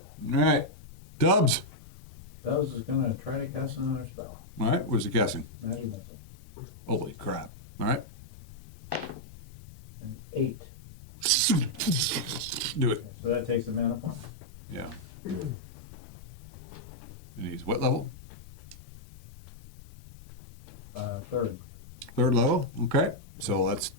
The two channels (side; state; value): both; normal; correlation -0.04